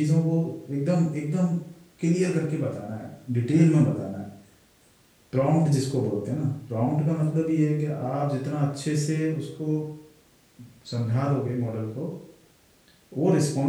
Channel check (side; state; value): both; identical; correlation 1.00